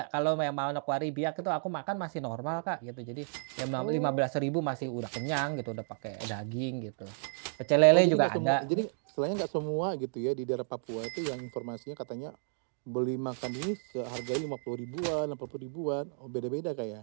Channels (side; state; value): left; silent; digital silence